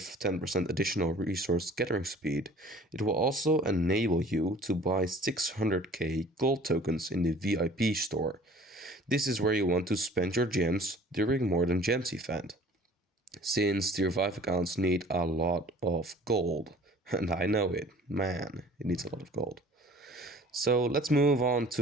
10% additional resource gathering speed, it will also enable you to buy 600k gold tokens in the VIP store. This is where you want to spend your gems during More Than Gems event. Since tier 5 accounts need a lot of gold, and I know it, man, it needs a lot of gold. So let's move on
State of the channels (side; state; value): both; normal; correlation 0.50